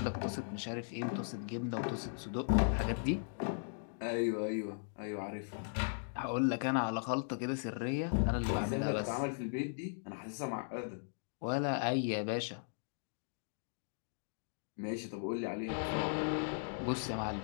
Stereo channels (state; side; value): silent; right; digital silence